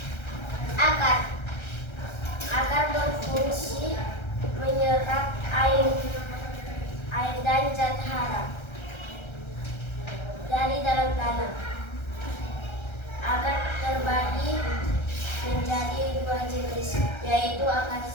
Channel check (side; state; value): right; late; 1.3 ms